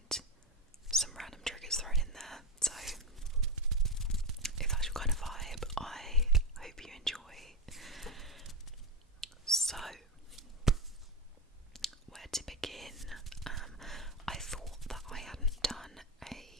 some random triggers thrown in there. So if that's your kind of vibe, I hope you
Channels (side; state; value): both; normal; correlation 0.15